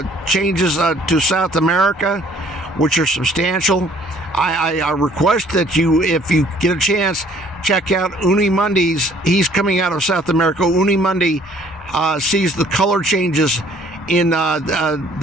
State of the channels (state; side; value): normal; both; correlation 0.58